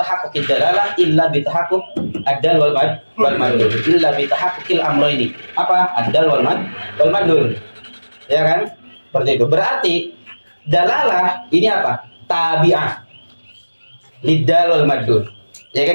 dalalah illa bitahaqquq ad-dal wal madlul. Illa bitahaqquqil amrayni. Apa? Ad-dal wal madlul. Ya kan? Seperti itu. Berarti dalalah ini apa? Tabi'ah lidal wal madlul. Ya kan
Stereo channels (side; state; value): both; inverted; correlation -1.00